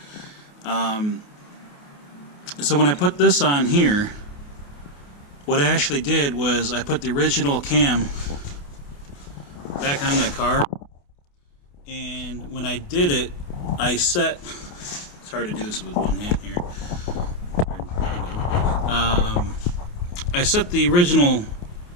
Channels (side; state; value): right; late; 28 ms